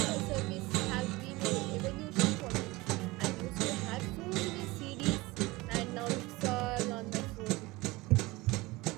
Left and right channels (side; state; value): left; quieter; 21.6 dB